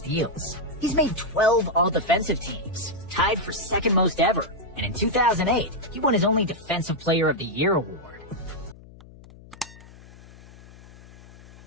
He's made 12 all-defensive teams, tied for second most ever, and in 2008, he won his only Defensive Player of the Year award.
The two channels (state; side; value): noise; left; hum, 21 dB below the sound